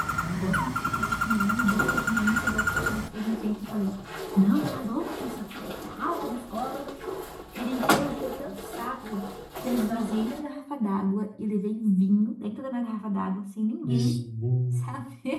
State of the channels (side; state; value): both; identical; correlation 1.00